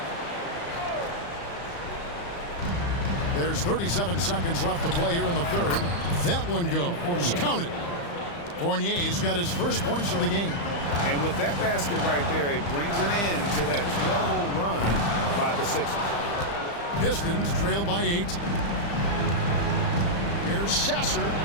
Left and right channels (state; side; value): late; right; 35 ms